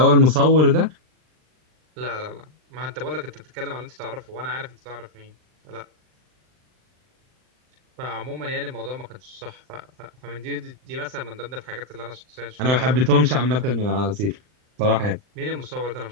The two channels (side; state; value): left; late; 39 ms